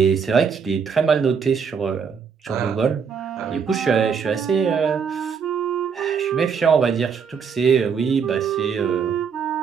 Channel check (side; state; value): left; quieter; 6.3 dB